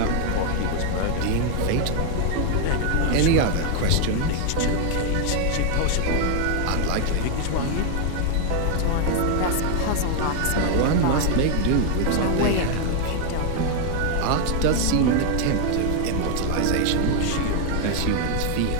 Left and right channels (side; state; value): both; different; correlation 0.00